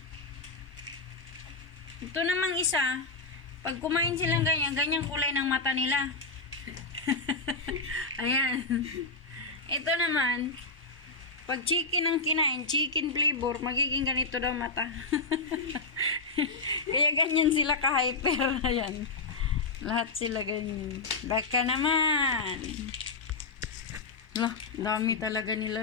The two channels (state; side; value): quieter; right; 3.7 dB